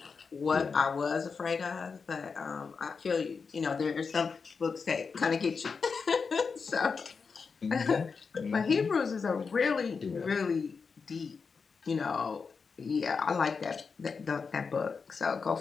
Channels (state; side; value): quieter; right; 5.2 dB